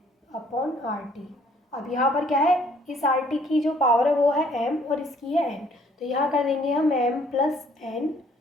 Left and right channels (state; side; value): normal; both; correlation 0.61